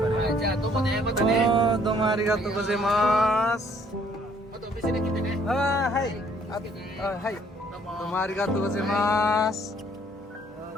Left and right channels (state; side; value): normal; both; correlation 0.62